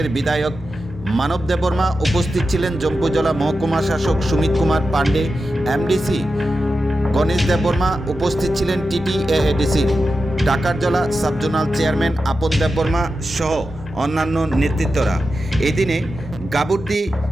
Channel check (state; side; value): normal; both; correlation 0.91